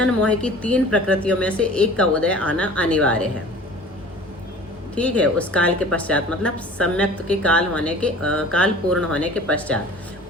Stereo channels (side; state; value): both; normal; correlation 0.44